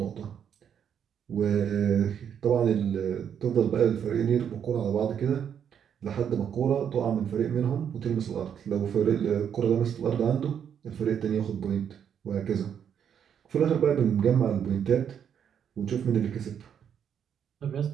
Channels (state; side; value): quieter; left; 8.4 dB